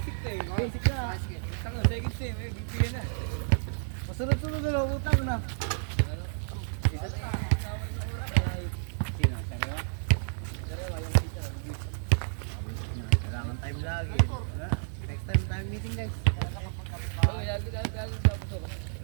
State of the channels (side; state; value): left; silent; 57 dB below the other